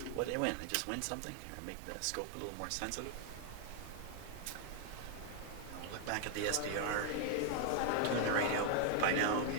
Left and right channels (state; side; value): different; both; correlation 0.00